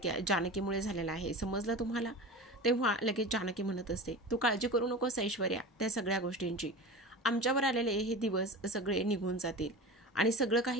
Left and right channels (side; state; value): both; normal; correlation 0.31